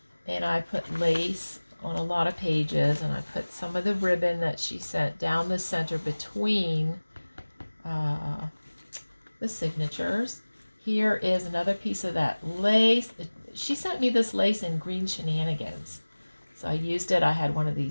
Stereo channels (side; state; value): both; inverted; correlation -1.00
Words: And I put lace on a lot of pages, and I put some of the ribbon that she sent down the center between the signatures. Here is another piece of that lace. She sent me this lace in Green Shenanigans. So I used it. I had one of